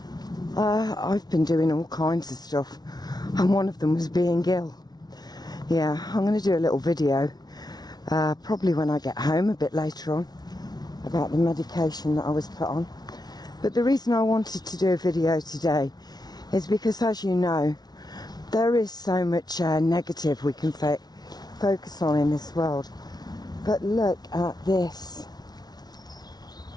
I've been doing all kinds of stuff, and one of them was being ill. Yeah, I'm going to do a little video, probably when I get home a bit later on, about the medication that I was put on. But the reason I wanted to do a video today is because, as you know, there is so much negative we can focus on in this world. But look at this.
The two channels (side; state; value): right; late; 0.19 ms